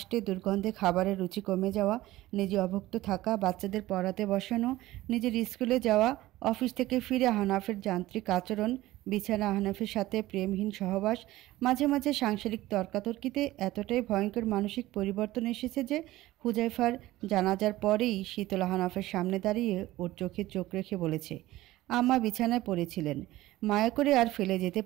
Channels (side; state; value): left; quieter; 16.9 dB